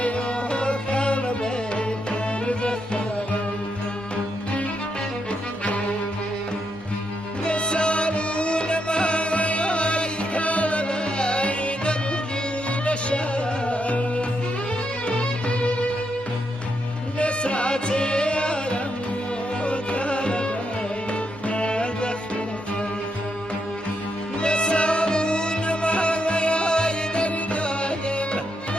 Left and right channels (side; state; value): both; normal; correlation 0.80